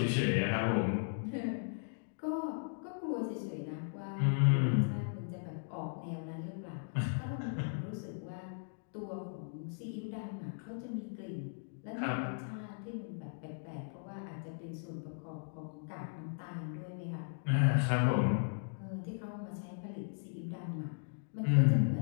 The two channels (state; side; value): silent; right; digital silence